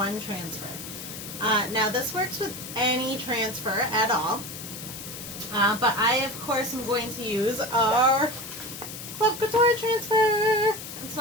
transfer. Now this works with any transfer at all, but I of course am going to use our Club Couture transfer. I'm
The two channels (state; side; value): noise; left; hiss, 10 dB below the sound